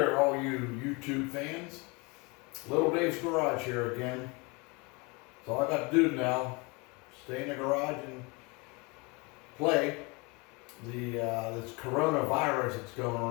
all you YouTube fans. Little Dave's Garage here again. So all I got to do now, stay in the garage and play. This coronavirus that's going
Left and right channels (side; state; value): right; quieter; 28.1 dB